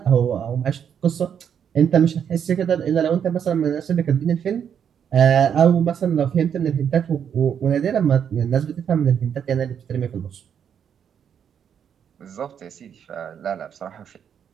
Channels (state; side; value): quieter; left; 8.2 dB